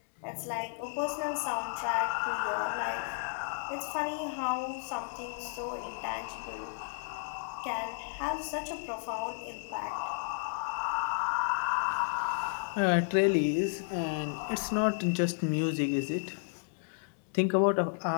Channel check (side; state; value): right; silent; digital silence